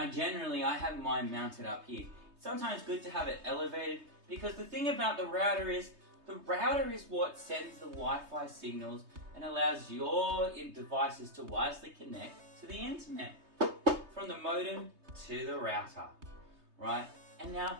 generally I have mine mounted up here. It's sometimes good to have it elevated, because the thing about the router is what sends the Wi-Fi signals and allows your devices to wirelessly connect to the internet from the modem to the router, right? And now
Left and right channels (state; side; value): late; left; 3.2 ms